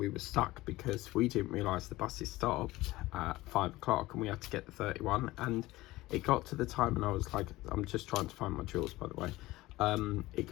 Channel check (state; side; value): quieter; right; 18.5 dB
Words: were stuck because we didn't realise the buses stopped at 5 o'clock and we had to get the 31, and it got to the time and I was like, I'm just trying to find my jewels, by the way. It